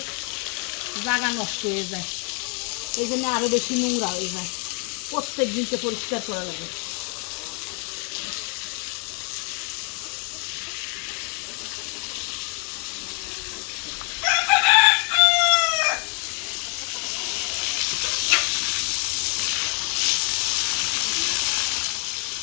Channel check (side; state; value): right; quieter; 36.9 dB